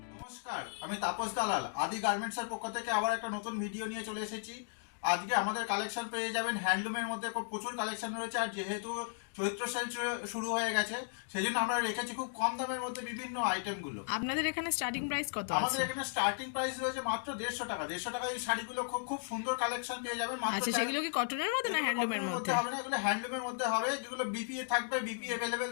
নমস্কার, আমি তাপস দালাল। আদি গার্মেন্টসের পক্ষ থেকে আবার একটা নতুন ভিডিও নিয়ে চলে এসেছি। আজকে আমাদের কালেকশন পেয়ে যাবেন হ্যান্ডলুমের মধ্যে প্রচুর কালেকশন রয়েছে, আর যেহেতু চৈত্র সেল শুরু হয়ে গেছে সেই জন্য আমরা রেখেছি খুব কম দামের মধ্যে বিভিন্ন আইটেমগুলো। আপনাদের এখানে স্টার্টিং প্রাইস কত আছে? আমাদের এখানে স্টার্টিং প্রাইস রয়েছে মাত্র 150 টাকা। 150 টাকা এই শাড়িগুলো খুব সুন্দর কালেকশন পেয়ে যাবেন। আচ্ছা, সেগুলো কি কটনের মধ্যে না হ্যান্ডলুমের মধ্যে? হবে না, এগুলো হ্যান্ডলুমের মধ্যে হবে, যেগুলো বিপিএ থাকবে, বিপি अवेलेबल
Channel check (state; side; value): silent; right; digital silence